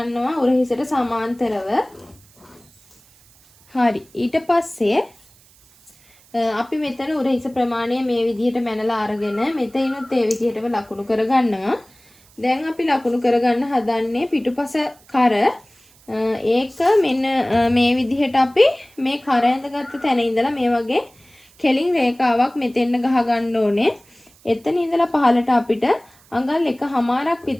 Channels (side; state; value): right; noise; hiss, 29 dB below the sound